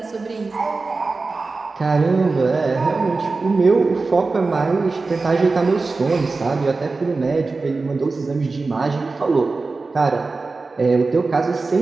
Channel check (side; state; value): left; quieter; 3.8 dB